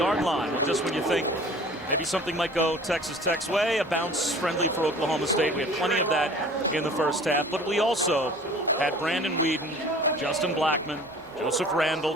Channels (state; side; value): normal; both; correlation 0.46